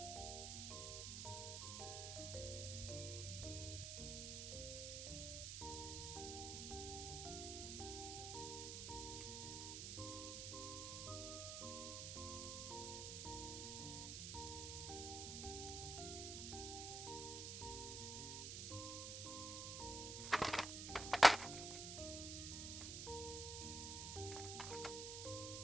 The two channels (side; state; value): right; noise; hiss, 4 dB below the sound